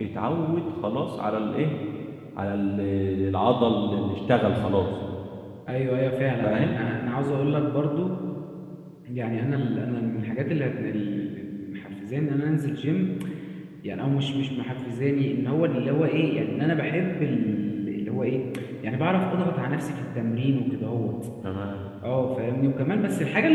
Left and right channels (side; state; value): both; identical; correlation 1.00